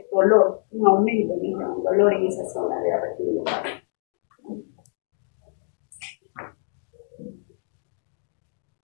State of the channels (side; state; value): right; silent; digital silence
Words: dolor, un aumento en el dolor en esa zona de apertura.